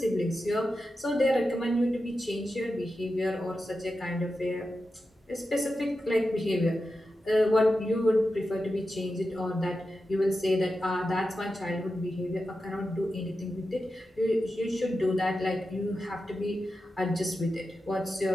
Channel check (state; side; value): normal; both; correlation 0.91